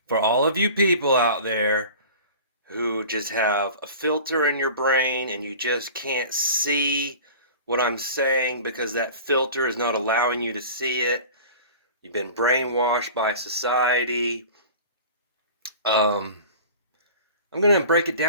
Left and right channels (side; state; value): both; inverted; correlation -0.40